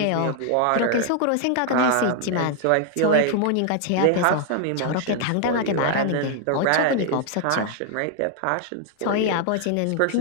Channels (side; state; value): both; different; correlation 0.00